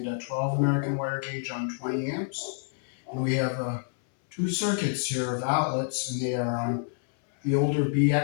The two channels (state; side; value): silent; right; 59 dB below the other